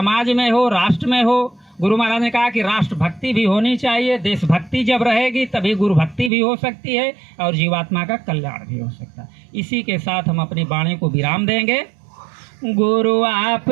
में हो, राष्ट्र में हो। गुरु महाराज ने कहा कि राष्ट्र भक्ति भी होनी चाहिए, देशभक्ति जब रहेगी तभी गुरु भक्ति भी हो सकती है और जीवात्मा का कल्याण भी हो सकता है। इसी के साथ हम अपनी वाणी को विराम देंगे। गुरु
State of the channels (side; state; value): left; drops out; at 6.3 s